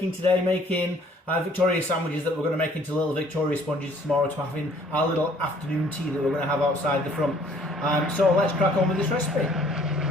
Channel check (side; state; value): both; normal; correlation 0.58